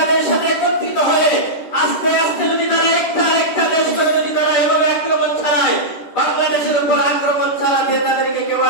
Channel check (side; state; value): right; late; 10 ms